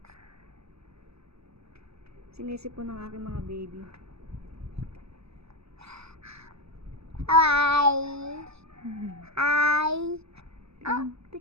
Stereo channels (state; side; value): late; left; 0.78 ms